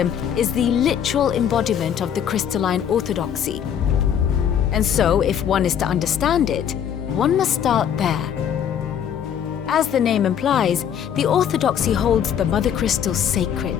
is the literal embodiment of the crystalline orthodoxy. And so, if one is to understand it, one must start there. As the name implies, the orthodoxy holds the Mother Crystals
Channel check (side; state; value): right; quieter; 8.9 dB